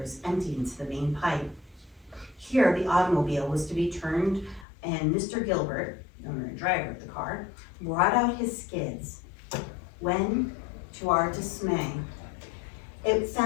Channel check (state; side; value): drops out; right; at 4.7 s